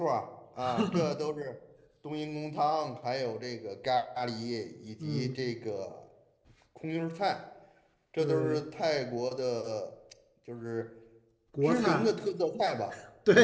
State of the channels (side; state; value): both; identical; correlation 1.00